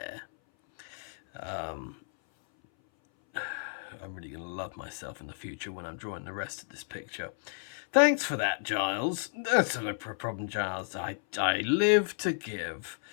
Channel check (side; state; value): right; silent; 56 dB below the other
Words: I'm really going to love myself in the future when I'm drawing the rest of this picture. Thanks for that, Giles. That's not a problem, Giles. I live to give.